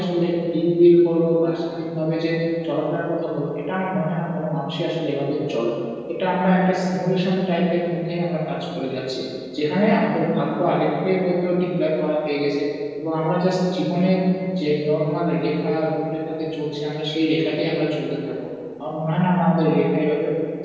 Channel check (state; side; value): identical; both; correlation 1.00